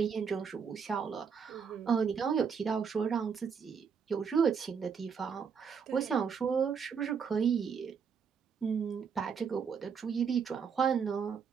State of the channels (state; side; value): quieter; left; 6.5 dB